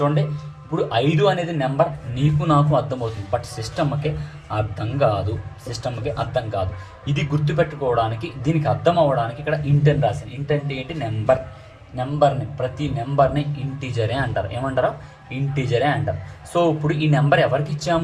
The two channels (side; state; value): both; identical; correlation 1.00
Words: ఇప్పుడు 5 అనేది నెంబర్ నీకు నాకు అర్థమవుతుంది, బట్ సిస్టమ్కి అర్థం కాదు. ఇది గుర్తుపెట్టుకోవడానికి, దీనికి అర్థం అవ్వడానికి ఇక్కడ ఇంట్ అని రాశాను. ఇంట్ అంటే ఏంటి? ప్రతి నెంబర్ని ఇంటీజరే అంటారు. ఏమంటారు? ఇంటీజరే అంటారు. సో ఇప్పుడు ఈ నెంబర్ ఎవరికి